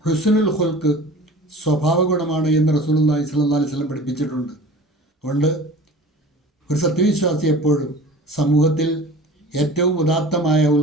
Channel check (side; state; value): both; normal; correlation 0.41